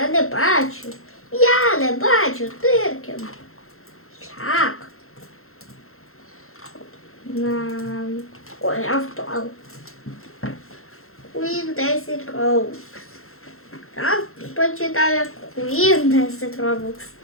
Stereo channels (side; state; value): right; late; 0.62 ms